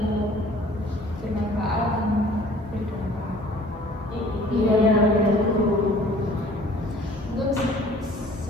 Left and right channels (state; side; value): normal; both; correlation 0.51